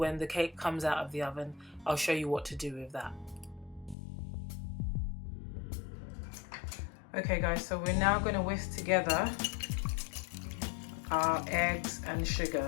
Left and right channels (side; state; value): right; drops out; at 4.0 s